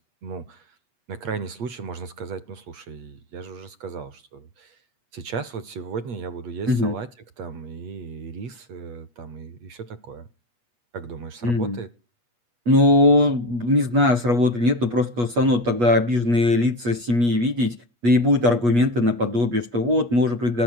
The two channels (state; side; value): late; left; 8.4 ms